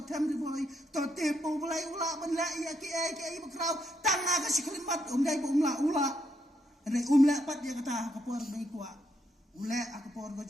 di boy. Tote po belai ula banlai ya ki bakrau. Tanga ke siklimat umdai po ula. Ada pat dia kata kapor baik kuat. Ule aku por ke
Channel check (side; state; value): both; normal; correlation 0.76